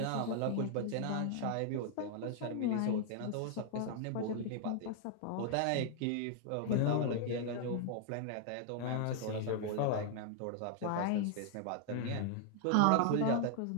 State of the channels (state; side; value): different; both; correlation 0.00